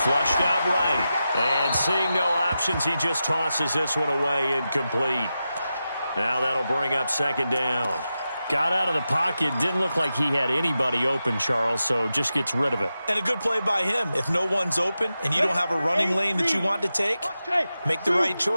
Flushed out right, and seeing no options, he just tosses this one away, incomplete. Now that'll bring up second down. Got out of the pocket, didn't look like he had anybody open, Charles, so just gets rid of it. And a good play by him. If no one's open and you don't have a running lane that you want to take, make the right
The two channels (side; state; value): both; inverted; correlation -0.91